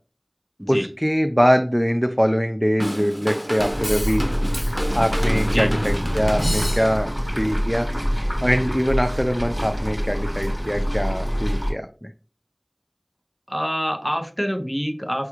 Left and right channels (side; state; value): both; identical; correlation 1.00